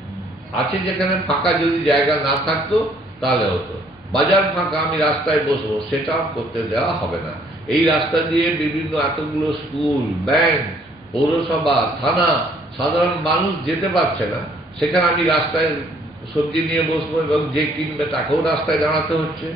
আছে যেখানে ফাঁকা যদি জায়গা না থাকতো তাহলে হতো। বাজার ফাঁকা, আমি রাস্তায় বসবো, সেটাও করতে দেওয়া হবে না। এই রাস্তা দিয়ে বিভিন্ন এতগুলো স্কুল, ব্যাংক, পৌরসভা, থানা, সাধারণ মানুষ যেতে পারছে না, সেখানে আমি রাস্তায় সবজি নিয়ে বসবো এবং যে কিনবে তাকেও রাস্তায় দাঁড়াতে হচ্ছে,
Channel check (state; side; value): normal; both; correlation 0.63